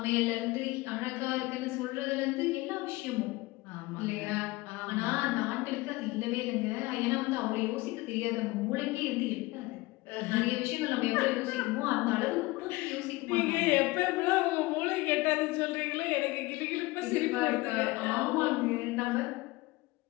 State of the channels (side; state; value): right; quieter; 21.5 dB